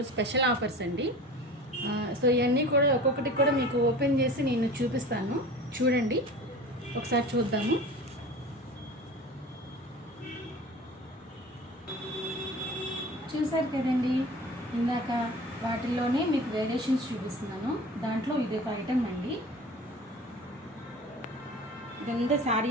స్పెషల్ ఆఫర్స్ అండి. సో ఇవన్నీ కూడా ఒక్కొక్కటి కూడా మీకు ఓపెన్ చేసి నేను చూపిస్తాను. చూడండి, ఒకసారి చూద్దాము. చూసారు కదండి, ఇందాక వాటిల్లోనే మీకు వేరియేషన్స్ చూపిస్తున్నాను. దాంట్లో ఇది ఒక ఐటమ్ అండి. ఇదంతా శారీ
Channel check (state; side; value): normal; both; correlation 0.39